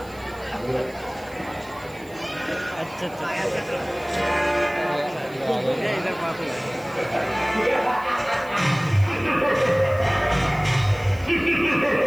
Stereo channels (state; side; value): noise; right; hiss, 24 dB below the sound